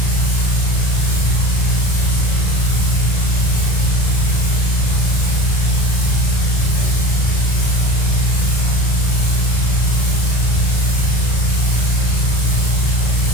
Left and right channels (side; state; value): right; late; 35 ms